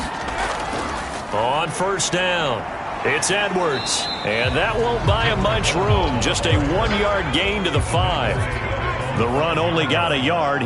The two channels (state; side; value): identical; both; correlation 1.00